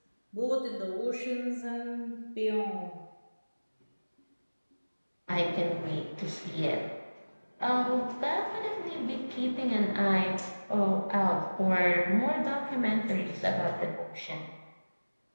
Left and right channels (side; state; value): both; inverted; correlation -1.00